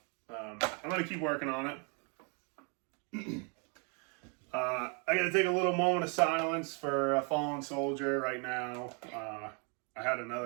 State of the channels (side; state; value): left; quieter; 36.2 dB